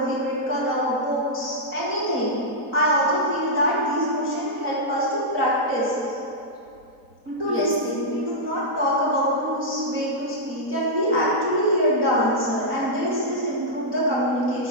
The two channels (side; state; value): left; late; 4.1 ms